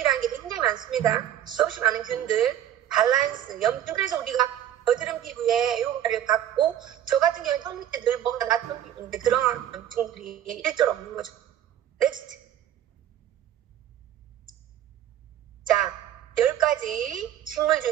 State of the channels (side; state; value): left; quieter; 11.0 dB